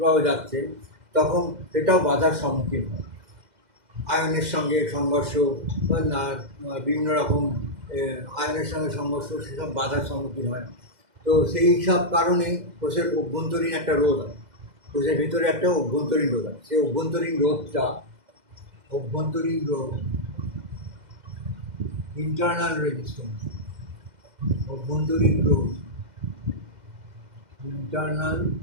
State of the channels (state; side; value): late; left; 2.0 ms